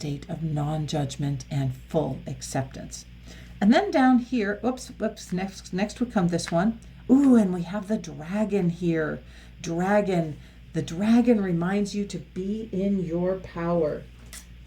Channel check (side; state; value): both; identical; correlation 1.00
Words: of non-judgment and full acceptance. And then down here, next would come this one. Ooh, and we have the dragon here. Dragon. The dragon reminds you to be in your power.